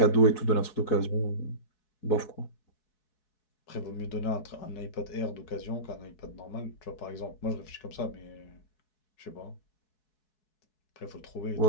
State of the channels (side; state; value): right; late; 4.7 ms